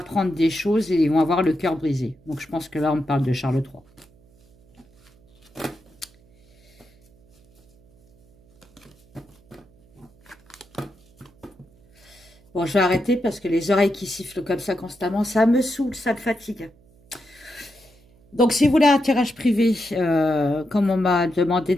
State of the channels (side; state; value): right; noise; hum, 30 dB below the sound